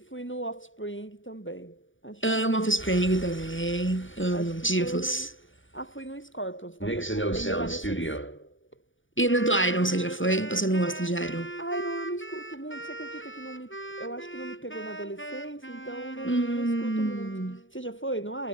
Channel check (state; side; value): late; right; 0.57 ms